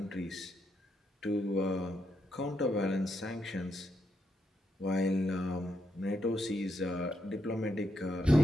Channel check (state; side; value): normal; both; correlation 0.80